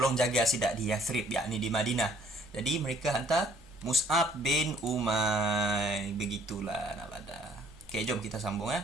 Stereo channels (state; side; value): normal; both; correlation 0.60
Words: jaga sidak di Yathrib, yakni di Madinah. Jadi mereka hantar Mus'ab bin Umair. Begitulah nak pada. Okey, jom kita sambung